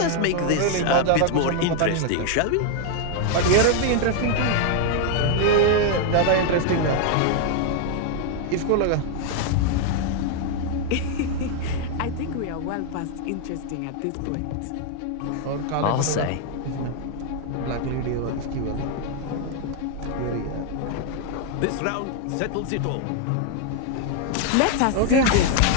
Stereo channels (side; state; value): both; different; correlation 0.00